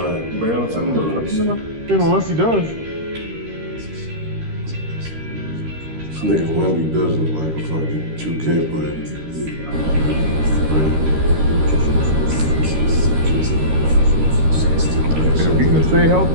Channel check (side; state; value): left; late; 13 ms